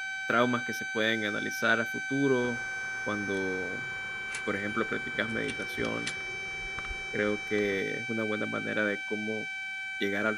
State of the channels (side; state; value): both; identical; correlation 1.00